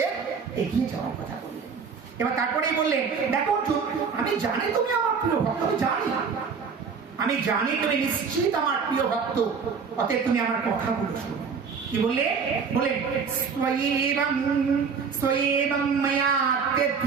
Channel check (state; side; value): quieter; left; 5.8 dB